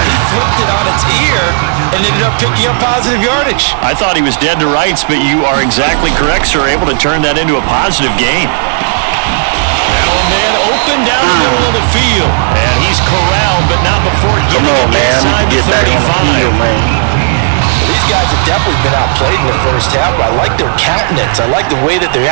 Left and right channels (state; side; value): silent; left; digital silence